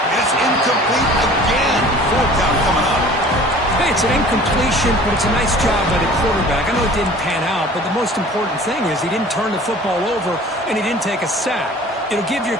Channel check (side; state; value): both; normal; correlation 0.47